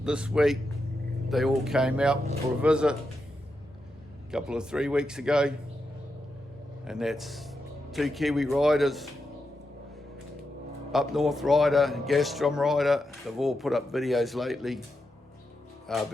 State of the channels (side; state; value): both; normal; correlation 0.86